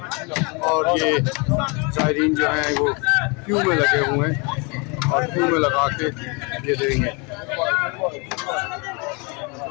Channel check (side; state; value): right; quieter; 31.1 dB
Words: और ये ज़ायरीन जो हैं वो क्यू में लगे हुए हैं, और क्यू में लगा के ये देंगे।